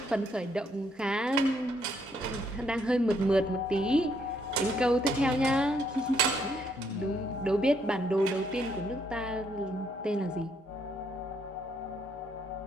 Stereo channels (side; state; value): both; normal; correlation 0.72